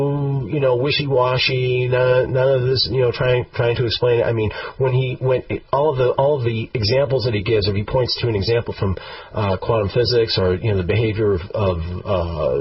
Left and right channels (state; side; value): identical; both; correlation 1.00